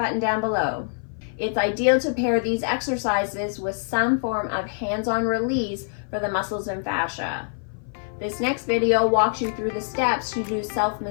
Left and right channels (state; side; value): silent; right; 56 dB below the other